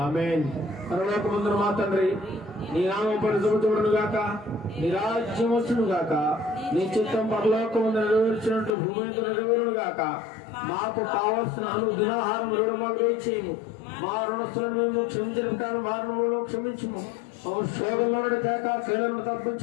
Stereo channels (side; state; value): right; drops out; at 8.7 s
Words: ఆమేన్. పరలోకమందున మా తండ్రి, నీ నామం పరిశుద్ధపరచబడును గాక, నీ రాజ్యం వచ్చును గాక, నీ చిత్తం పరలోకమందు నెరవేర్చినట్టు భూమి మీద నెరవేరును గాక. మాకు కావలసిన అనుదినాహారం మాకు దయచేయము. మా రుణస్తులను మేము క్షమించిన ప్రకారం మా రుణములను క్షమించుము. శోధంలో తేక కీలను